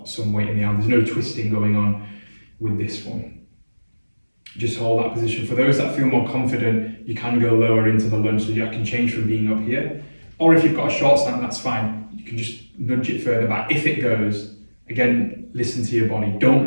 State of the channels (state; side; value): inverted; both; correlation -1.00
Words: some weight in the arm. There's no twisting going on with this one. Just hold that position. For those that feel more confident, you can go lower into the lunge, so you can change from being up here. Or if you've got a short stand, that's fine. You can just nudge it further back. If it goes, again, listen to your body. Don't